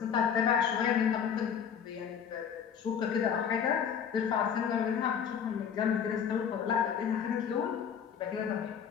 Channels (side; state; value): right; quieter; 7.7 dB